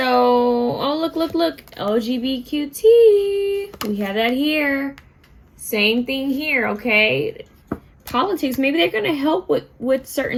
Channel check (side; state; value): both; identical; correlation 1.00